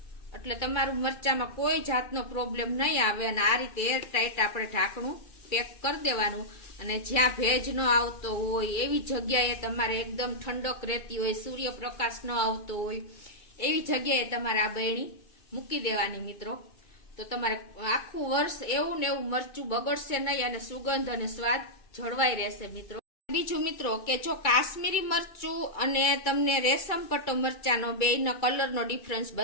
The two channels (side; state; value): right; late; 2.3 ms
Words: એટલે તમારું મરચામાં કોઈ જાતનો પ્રોબ્લેમ નહીં આવે. અને આ રીતે એર ટાઈટ આપણે ઢાંકણું પેક કરી દેવાનું. અને જ્યાં ભેજ ન આવતો હોય એવી જગ્યાએ તમારે એકદમ ઠંડક રહેતી હોય, સૂર્યપ્રકાશ ન આવતો હોય એવી જગ્યાએ તમારે આ બરણી મૂકી દેવાની મિત્રો. તો તમારે આખું વર્ષ એવું ને એવું મરચું બગડશે નહીં, અને સુગંધ અને સ્વાદ જળવાઈ રહેશે મિત્રો. બીજું મિત્રો કે જો કાશ્મીરી મરચું અને તમને રેશમ પટ્ટો મરચાનો બેયના કલરનો ડિફરન્સ